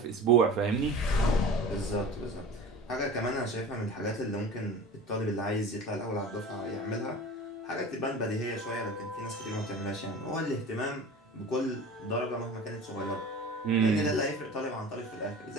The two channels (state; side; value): normal; both; correlation 0.37